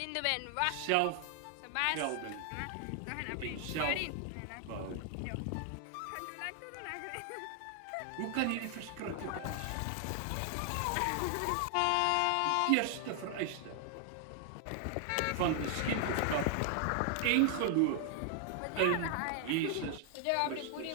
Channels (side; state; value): both; different; correlation 0.00